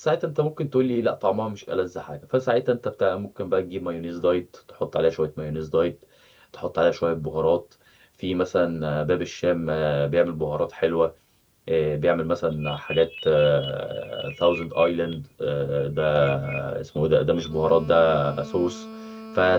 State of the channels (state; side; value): identical; both; correlation 1.00